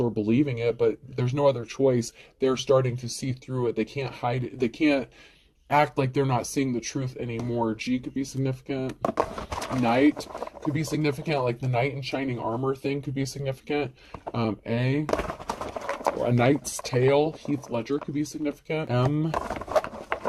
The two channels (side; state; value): both; identical; correlation 1.00